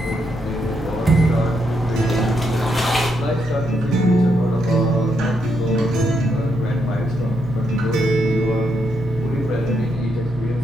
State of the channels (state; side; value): normal; both; correlation 0.79